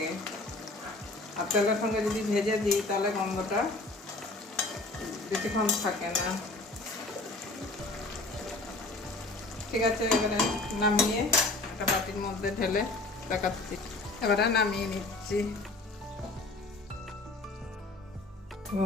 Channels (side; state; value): right; quieter; 3.0 dB